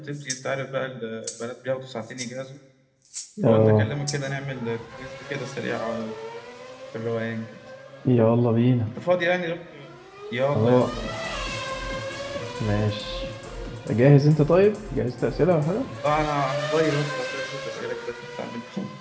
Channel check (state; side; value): identical; both; correlation 1.00